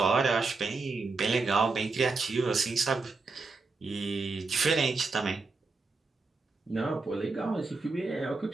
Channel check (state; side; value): quieter; left; 4.0 dB